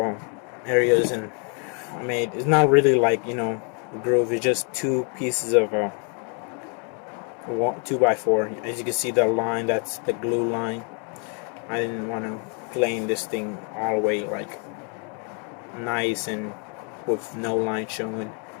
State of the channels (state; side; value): quieter; right; 38.9 dB